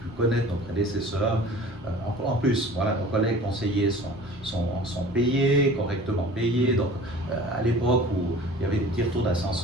connaître nos prédécesseurs. En plus, voilà, nos collègues conseillers sont payés, correctement payés. Donc, à l'époque où il y avait des petits retours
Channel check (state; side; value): normal; both; correlation 0.44